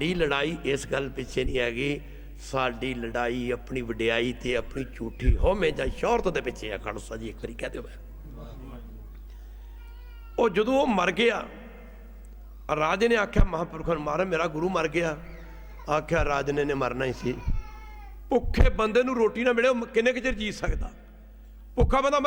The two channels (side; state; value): both; identical; correlation 1.00